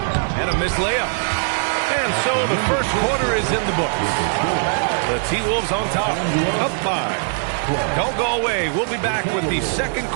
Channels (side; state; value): left; silent; digital silence